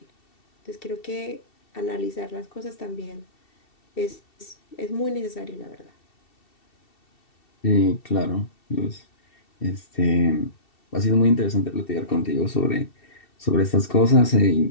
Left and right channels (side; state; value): right; late; 2.7 ms